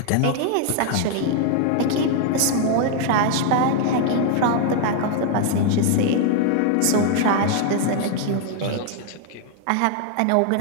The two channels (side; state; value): both; different; correlation 0.00